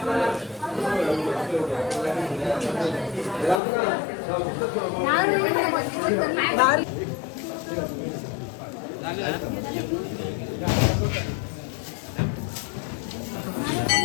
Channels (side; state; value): right; drops out; at 3.6 s